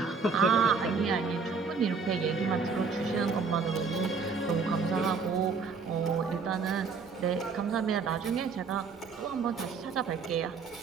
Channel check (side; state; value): left; quieter; 5.0 dB